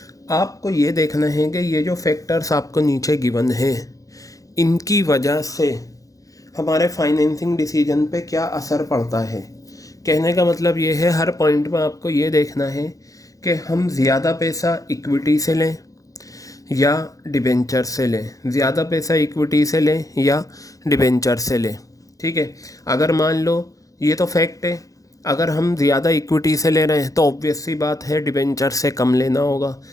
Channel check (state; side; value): late; right; 0.17 ms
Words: आपको ये देखना है कि ये जो फैक्टर्स आपको नीचे गिवन है, इनकी वजह से हमारे फाइनेंसिंग डिसीजन पे क्या असर पड़ता है। कहने का मतलब ये है, हर पॉइंट में आपको ये देखना है कि हम ज़्यादा पैसा इक्विटी से लें या डिबेंचर से लें, ज़्यादा पैसा इक्विटी से लें या डिबेंचर से लें, ठीक है। अगर मान लो ये तो फैक्ट है, अगर हम ज़्यादा इक्विटी से ले रहे हैं तो ऑब्वियस सी बात है डिबेंचर से कम लेना होगा।